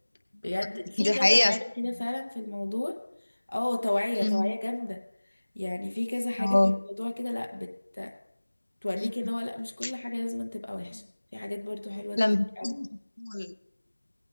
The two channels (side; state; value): both; inverted; correlation -1.00